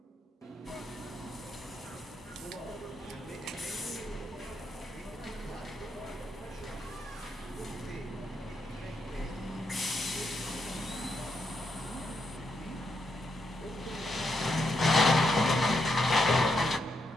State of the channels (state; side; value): normal; both; correlation 0.80